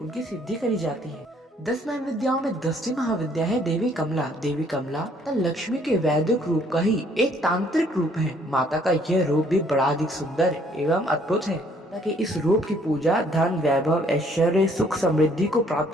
सिद्धि करी जाती है। 10 महाविद्याओं में 10वीं महाविद्या है देवी कमला। देवी कमला लक्ष्मी के वैदिक रूप का ही एक तांत्रिक रूप है। माता का यह रूप भी बड़ा अधिक सुंदर एवं अद्भुत है, ताकि इस रूप की पूजा धन वैभव ऐश्वर्य सुख समृद्धि को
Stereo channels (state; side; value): normal; both; correlation 0.63